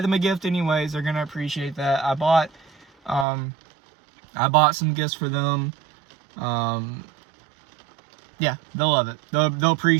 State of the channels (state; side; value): drops out; left; at 3.2 s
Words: them a gift anyways. They're gonna appreciate that. I bought some gifts for them. Yeah, they'll love it. They'll